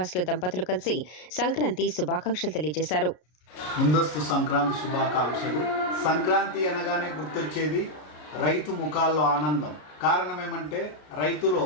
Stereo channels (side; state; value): right; late; 33 ms